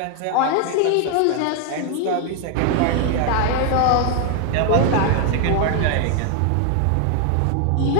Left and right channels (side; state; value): both; different; correlation 0.00